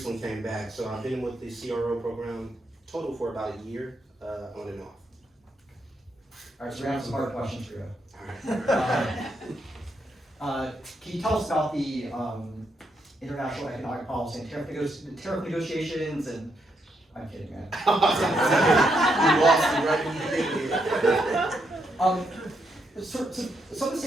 came back, so I've been with the CRO program total for about a year, on and off. All right, so we have some hard questions for you. All right. Can you tell us about the international economic policy and tariff negotiations and I'm kidding, man. You lost me right when you get here. So some of the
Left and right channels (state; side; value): normal; both; correlation 0.79